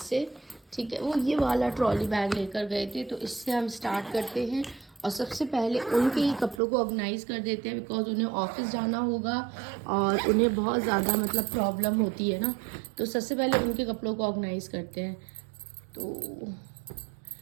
से, ठीक है। वो ये वाला ट्रॉली बैग लेकर गए थे तो इससे हम स्टार्ट करते हैं। और सबसे पहले उनके ही कपड़ों को ऑर्गेनाइज कर देते हैं बिकॉज उन्हें ऑफिस जाना होगा और उन्हें बहुत ज़्यादा मतलब प्रॉब्लम होती है ना। तो सबसे पहले उनके कपड़ों को ऑर्गेनाइज करते हैं। तो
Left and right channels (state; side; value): drops out; left; at 6.6 s